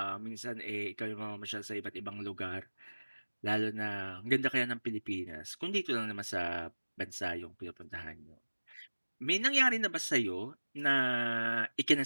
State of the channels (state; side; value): inverted; both; correlation -1.00